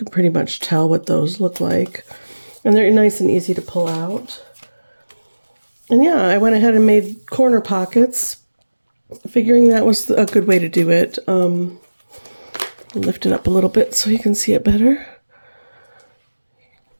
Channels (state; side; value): inverted; both; correlation -1.00